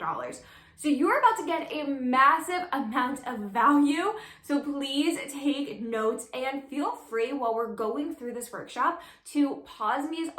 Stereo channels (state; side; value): identical; both; correlation 1.00